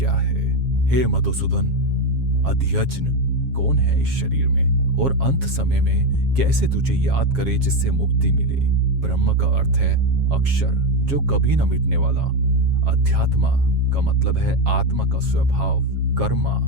है। हे मधुसूदन, अध्यज्ञ कौन है इस शरीर में, और अंत समय में कैसे तुझे याद करे जिससे मुक्ति मिले। ब्रह्म का अर्थ है अक्षर, जो कभी न मिटने वाला। अध्यात्म का मतलब है आत्मा का स्वभाव। कर्मा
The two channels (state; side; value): late; left; 7.3 ms